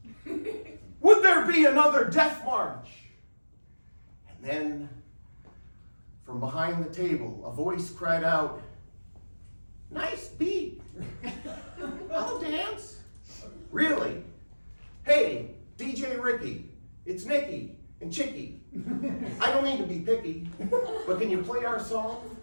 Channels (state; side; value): inverted; both; correlation -1.00